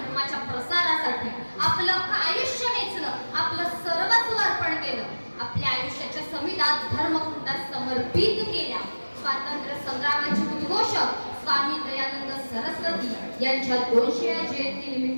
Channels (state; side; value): inverted; both; correlation -1.00